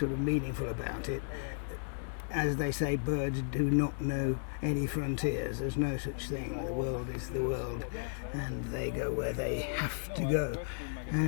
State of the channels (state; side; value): silent; right; digital silence